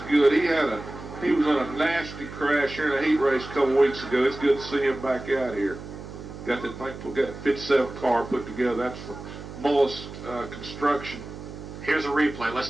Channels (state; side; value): noise; right; hum, 12 dB below the sound